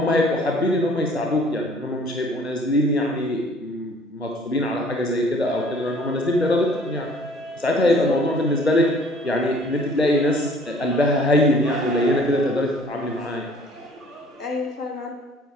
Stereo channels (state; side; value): normal; both; correlation 0.54